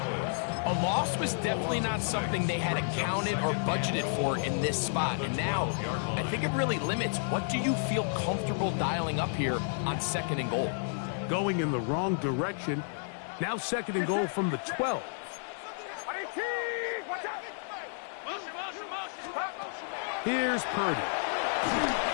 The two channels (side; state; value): right; silent; digital silence